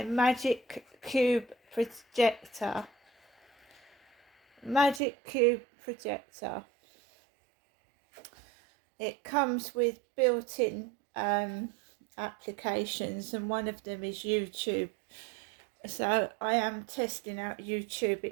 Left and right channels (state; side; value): drops out; left; at 5.0 s